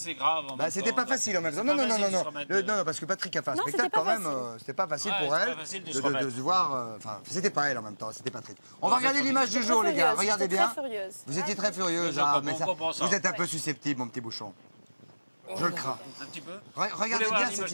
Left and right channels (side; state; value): both; inverted; correlation -1.00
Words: grave. Bah, c'était pas facile en même temps. Non, parce que Patrick a fait un spectacle quand même. C'était pas facile pour elle de se voir. Enfin, c'était pas elle en même temps, c'était Patrick. On va regarder l'image du jour, les gars. Regardez bien. Vous étiez très furieuse. Vous êtes un peu susceptible, mon petit bouchon. Je le crains. Un petit peu. Regardez bien cette